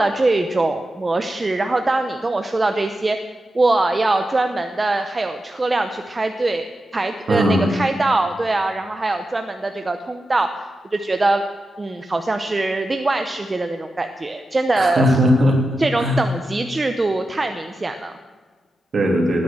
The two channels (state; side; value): normal; both; correlation 0.90